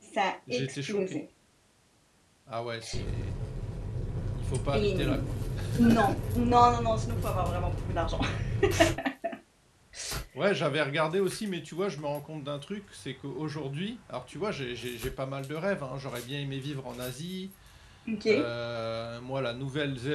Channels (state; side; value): identical; both; correlation 1.00